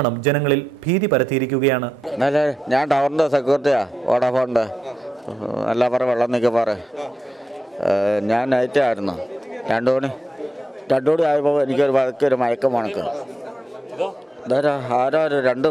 ജനങ്ങളിൽ ഭീതി പരത്തിയിരിക്കുകയാണ്. ഞാൻ ടവറിന്റെ സെക്യൂരിറ്റിയാ, വോഡാഫോണിന്റെ നെല്ലാപ്പാറ വെള്ളം നിൽക്കപ്പാറ. ഞാൻ നൈറ്റായിരുന്നു. 2 മണി ആയപ്പോൾ എനിക്കൊരു മയക്കം മണക്ക്. ആരോ 2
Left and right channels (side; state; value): both; normal; correlation 0.87